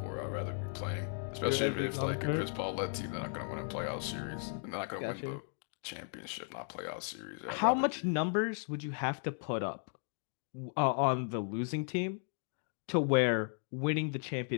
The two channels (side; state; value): right; silent; 54 dB below the other